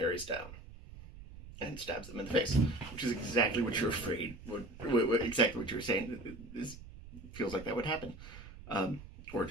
down and stabs them in the face, which is exactly what you're afraid would, exactly what you were saying. This feels like that would happen, or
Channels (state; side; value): noise; right; rumble, 15 dB below the sound